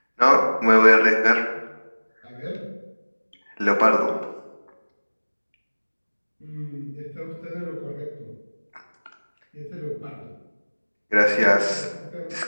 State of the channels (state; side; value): inverted; both; correlation -1.00